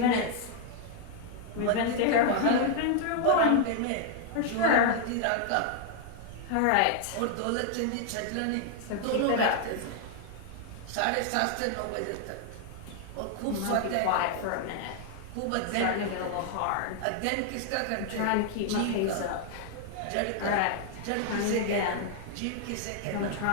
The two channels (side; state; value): both; different; correlation 0.00